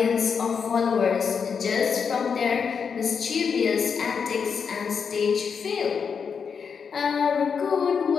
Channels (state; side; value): quieter; right; 6.3 dB